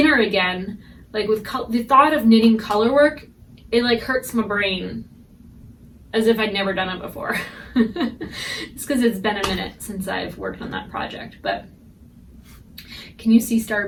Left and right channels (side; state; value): both; identical; correlation 1.00